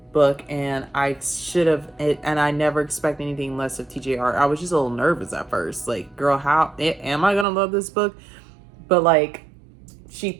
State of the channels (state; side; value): drops out; left; at 7.5 s